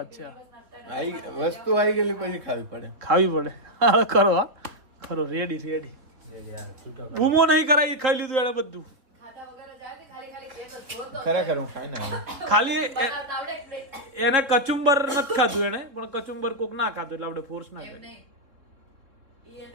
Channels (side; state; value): left; late; 3.6 ms